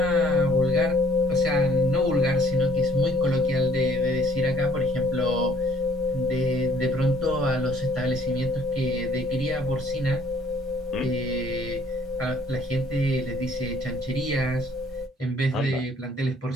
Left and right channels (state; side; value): normal; both; correlation 0.61